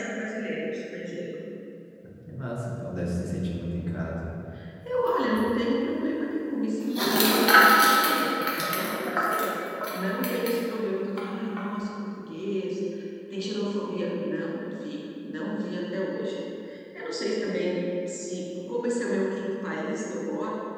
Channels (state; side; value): identical; both; correlation 1.00